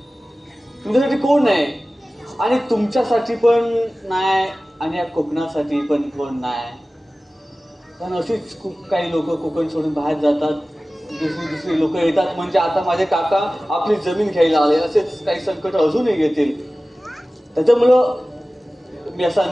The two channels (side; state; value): both; normal; correlation 0.97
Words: तुमच्यासाठी कोण आहे? आणि तुमच्यासाठी पण नाही आणि या कोकणासाठी पण कोण नाही. पण अशीच खूप काही लोक कोकण सोडून बाहेर जातात, दुसरी लोक येतात. म्हणजे आता माझे काका आपली जमीन घ्यायला आले, असेच काही संकट अजूनही येतील. त्याच्यामुळं मी असा